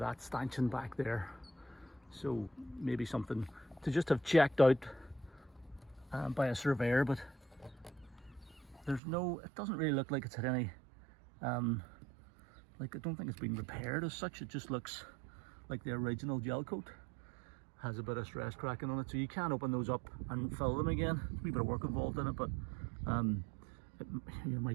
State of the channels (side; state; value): left; drops out; at 9.0 s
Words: stanchion back there. So maybe something to just have checked out by a surveyor, but there's no, it doesn't really look like it's had any, like I don't think it's been repaired as such. It just looks like the original gel coat. Has a bit of stress cracking on it, so you can open those up and fill them again. There's a wee bit of work involved in it, but you